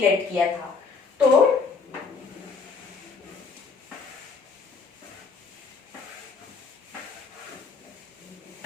late किया था. तो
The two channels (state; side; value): quieter; right; 4.9 dB